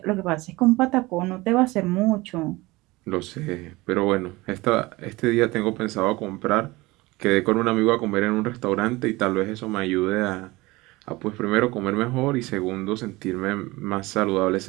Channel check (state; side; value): quieter; left; 21.3 dB